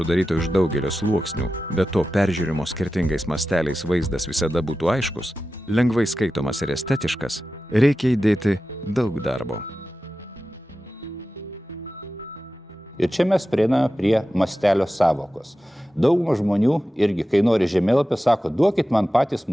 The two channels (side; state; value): both; normal; correlation 0.93